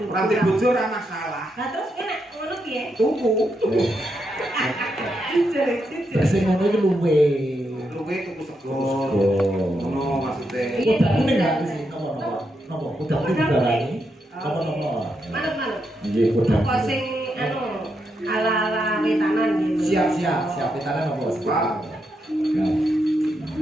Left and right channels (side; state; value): both; normal; correlation 0.82